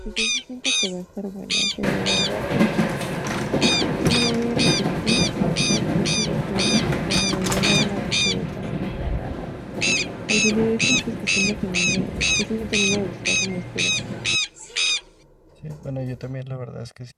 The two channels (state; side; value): identical; both; correlation 1.00